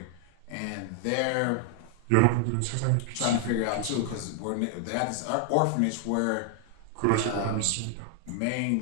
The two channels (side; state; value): both; different; correlation 0.00